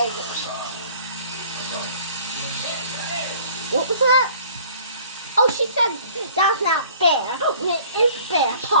What was that? Oh, she said that's not fair. It is fair,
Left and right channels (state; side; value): inverted; both; correlation -0.52